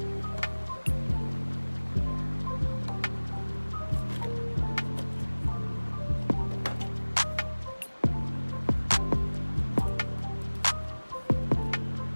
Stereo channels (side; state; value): both; inverted; correlation -1.00